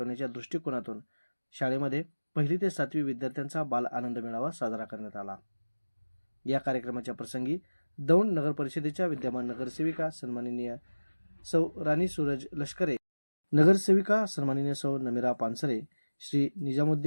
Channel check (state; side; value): inverted; both; correlation -1.00